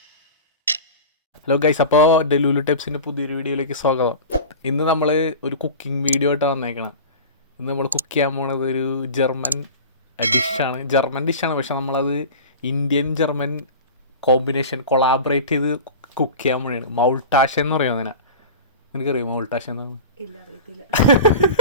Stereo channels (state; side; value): inverted; both; correlation -0.34